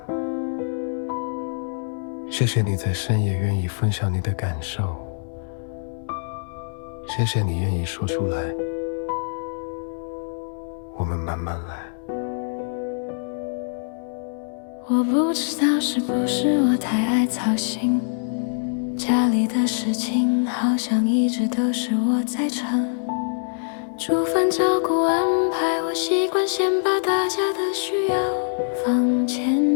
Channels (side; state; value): right; silent; digital silence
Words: 谢谢你在深夜愿意分享你的感受，谢谢你愿意说出来，我们慢慢来。我不知道是不是我太爱操心，家里的事情好像一直都是我在撑，煮饭照顾安排，我习惯先把大家的需要放前